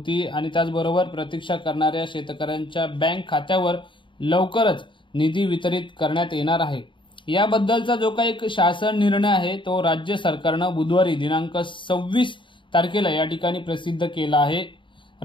आणि त्याचबरोबर प्रतीक्षा करणाऱ्या शेतकऱ्यांच्या बँक खात्यावर लवकरच निधी वितरित करण्यात येणार आहे। याबद्दलचा जो काही शासन निर्णय आहे तो राज्य सरकारनं बुधवारी दिनांक 26 तारखेला या ठिकाणी प्रसिद्ध केला आहे।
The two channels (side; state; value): right; late; 0.24 ms